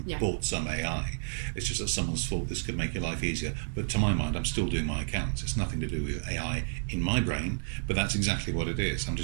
and bought some AI. It's just that someone's thought this could make your life easier. But to my mind, I'm still doing my accounts. It's nothing to do with AI in my brain, but that's exactly what it is. I'm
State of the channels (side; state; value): left; silent; digital silence